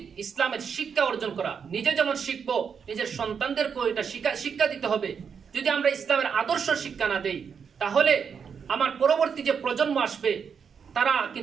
ইসলামের শিক্ষা অর্জন করা। নিজে যেমন শিখবো, নিজের সন্তানদেরকেও এটা শিক্ষা দিতে হবে। যদি আমরা ইসলামের আদর্শ শিক্ষা না দেই, তাহলে আমার পরবর্তী যে প্রজন্ম আসবে, তারা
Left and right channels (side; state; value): left; quieter; 6.7 dB